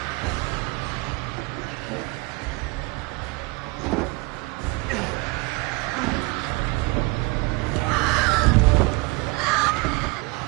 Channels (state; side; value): quieter; left; 25.8 dB